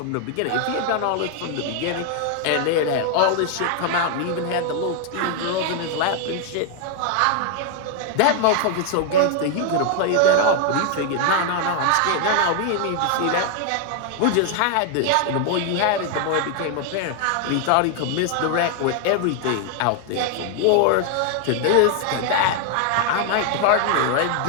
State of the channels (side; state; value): both; different; correlation 0.00